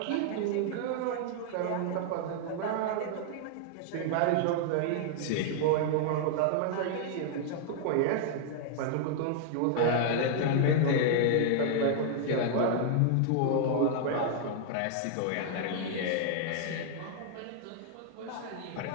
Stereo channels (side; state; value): both; different; correlation -0.01